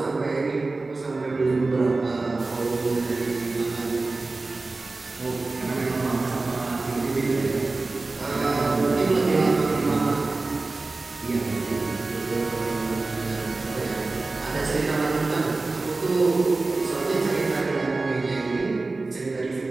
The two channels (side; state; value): left; quieter; 3.5 dB